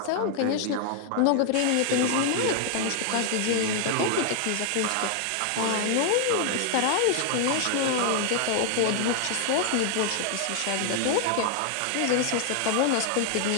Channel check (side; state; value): both; different; correlation 0.00